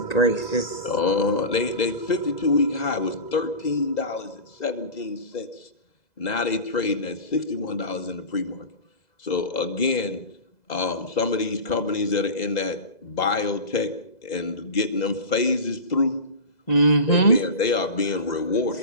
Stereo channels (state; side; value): late; right; 2.0 ms